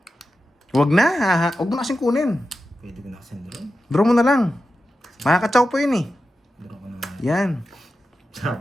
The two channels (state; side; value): normal; both; correlation 0.91